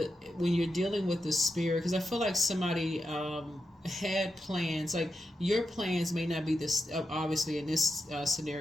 spirit, because I feel like somebody had plans. Like your plans may not be this. Obviously, in this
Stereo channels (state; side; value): normal; both; correlation 0.88